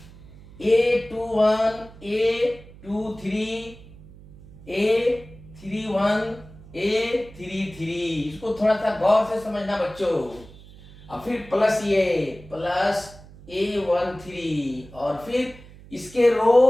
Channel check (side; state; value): right; noise; hum, 20 dB below the sound